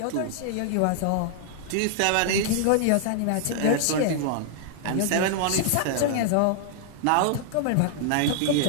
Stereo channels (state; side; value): different; both; correlation -0.01